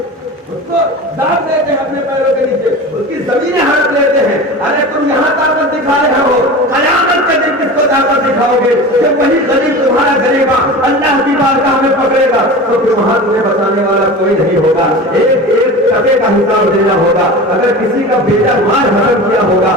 اس کو داب دیتے ہیں اپنے پیروں کے نیچے، اس کی زمینیں ہڑپ لیتے ہیں. ارے تم یہاں طاقت دکھا رہے ہو، قیامت کے دن کس کو طاقت دکھاؤ گے؟ جب وہی غریب تمہارا غریبا اللہ کی بارگاہ میں پکڑے گا تو پھر وہاں تمہیں بچانے والا کوئی نہیں ہوگا. ایک ایک ٹکے کا حساب دینا ہوگا. اگر کسی کا بیٹا مال حرام کیا ہوگا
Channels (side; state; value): both; normal; correlation 0.32